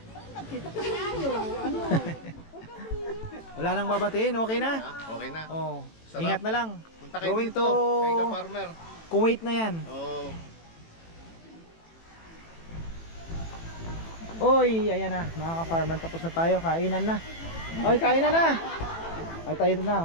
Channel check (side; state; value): right; late; 18 ms